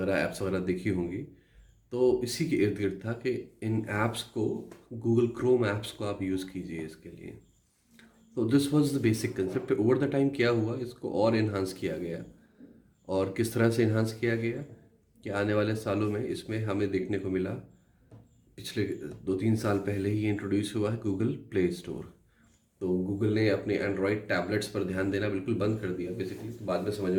ऐप्स वगैरह देखी होंगी। तो इसी के इर्द गिर्द था कि इन ऐप्स को, गूगल क्रोम ऐप्स को आप यूज़ कीजिए इसके लिए। तो this was the basic concept. Over the time क्या हुआ, इसको और इन्हांस किया गया। और किस तरह से इन्हांस किया गया कि आने वाले सालों में इसमें हमें देखने को मिला, पिछले 2-3 साल पहले ही इंट्रोड्यूस हुआ है गूगल प्ले स्टोर। तो गूगल ने अपने एंड्रॉयड टैबलेट्स पर ध्यान देना बिल्कुल बंद कर दिया बेसिकली। तो बाद में समझ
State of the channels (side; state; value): both; identical; correlation 1.00